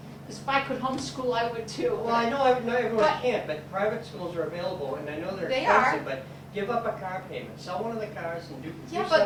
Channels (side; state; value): both; identical; correlation 1.00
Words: because if I could homeschool, I would too. Well, I know not everyone But- can't, but private schools are available, and I know they're They are. expensive, but give up a car payment, sell one of the cars and do Yeah, some.